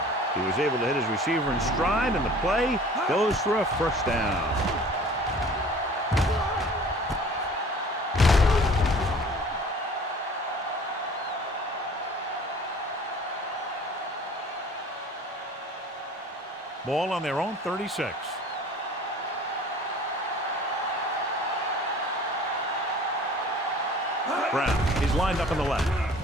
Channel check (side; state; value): both; normal; correlation 0.47